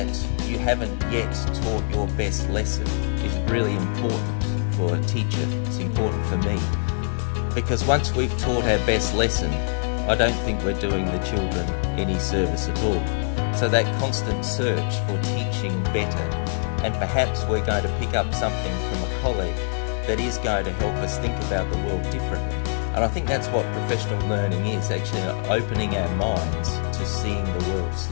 you haven't yet taught your best lesson is really important for a teacher. It's important for me. Because once we've taught our best lesson, I don't think we're doing the children any service at all. So that constant search for teaching better, and perhaps we're going to pick up something from a colleague that is going to help us think about the world differently. And I think that's what professional learning is, actually opening our minds to seeing the world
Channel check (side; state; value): right; silent; 63 dB below the other